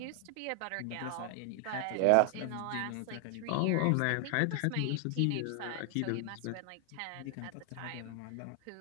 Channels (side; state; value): both; different; correlation 0.00